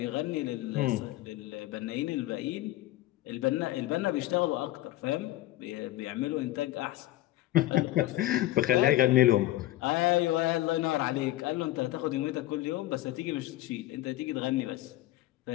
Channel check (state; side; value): quieter; right; 16.1 dB